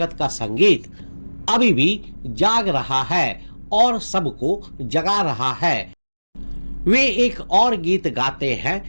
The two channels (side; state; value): both; inverted; correlation -1.00